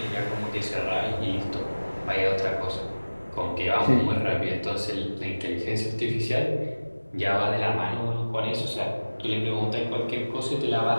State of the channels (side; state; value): both; inverted; correlation -1.00